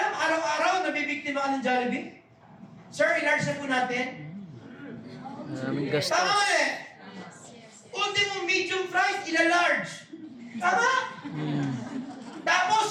araw-araw nabibiktima ka ng Jollibee? Sir, i-large na po natin. Maraming gastos. Tama eh. Ultimo medium fries, ila-large. Tama? Tapos,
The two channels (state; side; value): identical; both; correlation 1.00